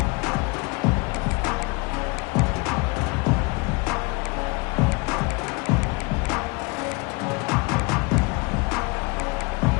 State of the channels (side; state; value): right; quieter; 28.0 dB